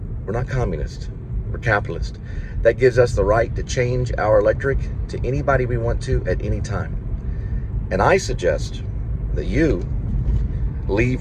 We're not communist, we're capitalist. That gives us the right to change our electric to anybody we want to at any time. And I suggest that you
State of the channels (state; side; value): identical; both; correlation 1.00